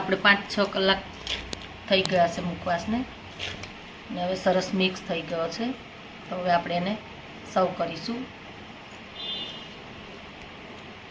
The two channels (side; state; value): both; identical; correlation 1.00